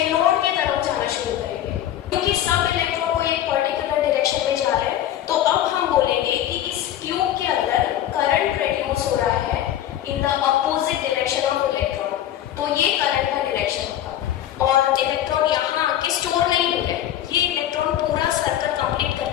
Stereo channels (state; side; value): quieter; right; 11.8 dB